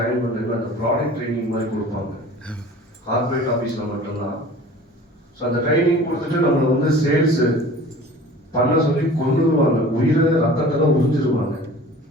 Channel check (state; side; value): normal; both; correlation 0.43